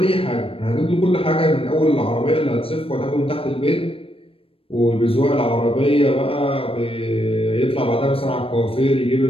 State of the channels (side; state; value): right; late; 0.27 ms